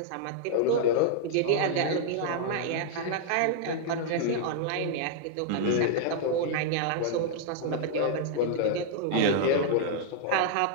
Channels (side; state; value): both; different; correlation -0.01